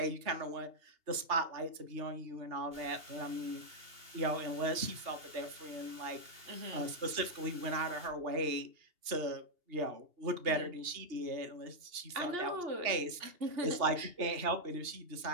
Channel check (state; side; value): late; left; 2.8 ms